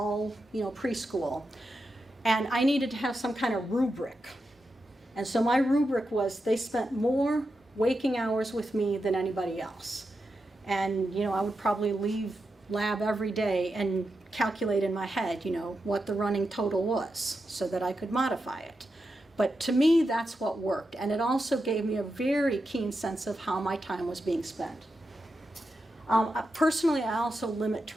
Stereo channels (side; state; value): both; normal; correlation 0.88